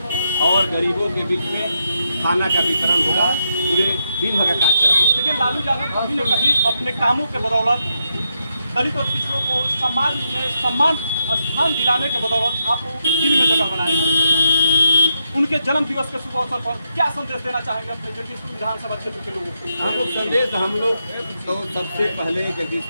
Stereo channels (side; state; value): both; inverted; correlation -0.82